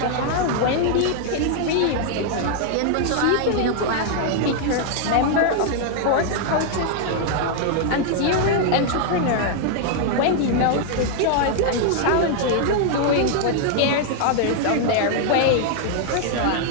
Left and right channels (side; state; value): both; different; correlation 0.00